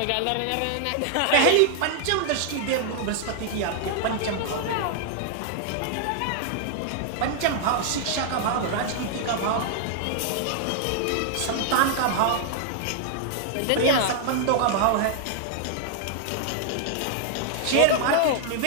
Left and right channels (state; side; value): different; both; correlation -0.01